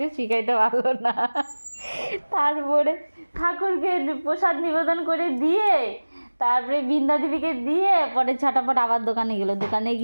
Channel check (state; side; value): inverted; both; correlation -1.00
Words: শিখাইতে পারলো না। তারপরে ঠাকুরকে প্রসাদ নিবেদন করে দিয়ে তারপরে বৃন্দা দেবীকে দিয়ে পরে ছটাপট আবার দোকানে গেলো, দোকানে